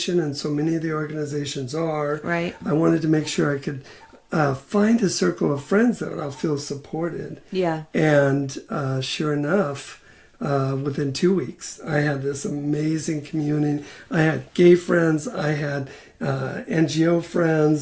and so many of the organizations are. Right. I wanted to make sure I could find a circle of friends that I'll feel supported. Yeah. And sure enough, within 2 weeks, I had this amazing community. I had gay friends. I had NGO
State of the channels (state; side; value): identical; both; correlation 1.00